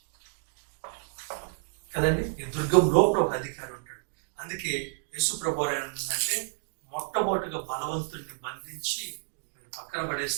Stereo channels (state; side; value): silent; left; digital silence